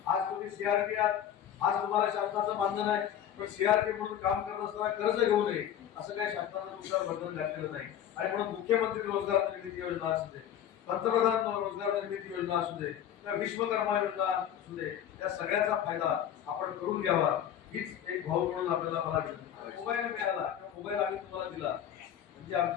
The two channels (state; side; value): quieter; right; 10.1 dB